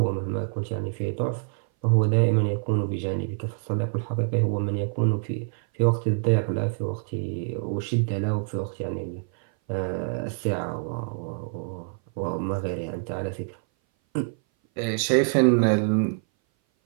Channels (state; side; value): silent; left; 58 dB below the other